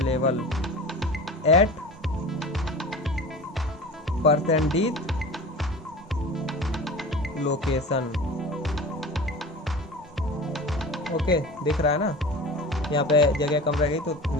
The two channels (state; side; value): normal; both; correlation 0.35